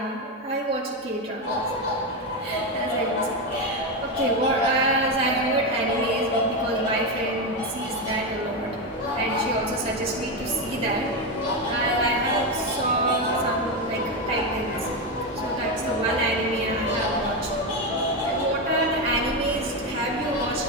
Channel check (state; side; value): normal; both; correlation 0.11